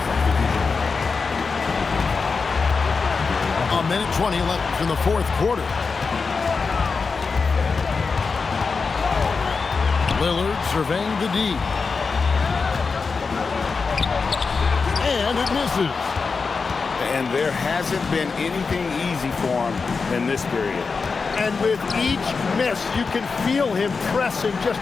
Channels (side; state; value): right; quieter; 4.8 dB